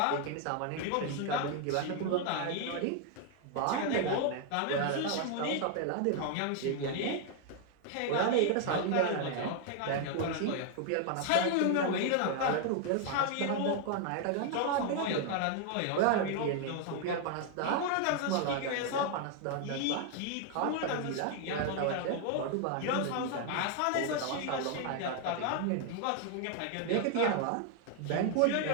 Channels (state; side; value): different; both; correlation 0.00